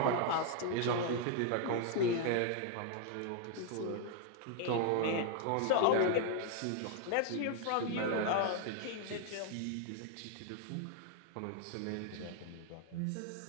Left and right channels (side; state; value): both; different; correlation 0.00